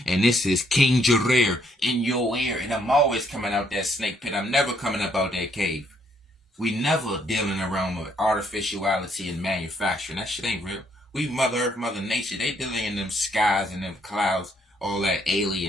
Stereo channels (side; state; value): both; normal; correlation 0.70